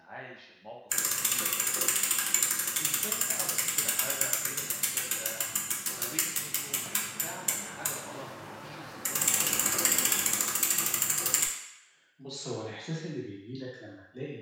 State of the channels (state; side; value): identical; both; correlation 1.00